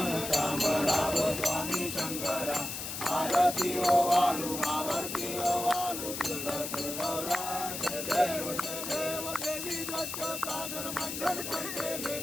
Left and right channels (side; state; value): left; noise; hiss, 5 dB below the sound